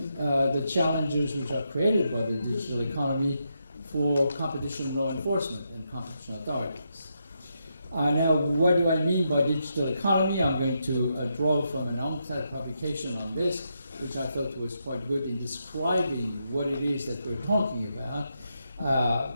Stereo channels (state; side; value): inverted; both; correlation -0.82